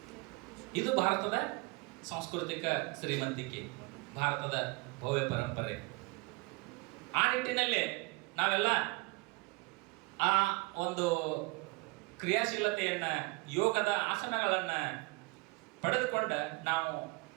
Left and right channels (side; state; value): left; quieter; 26.3 dB